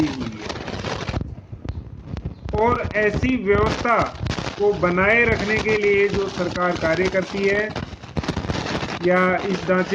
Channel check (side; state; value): both; identical; correlation 1.00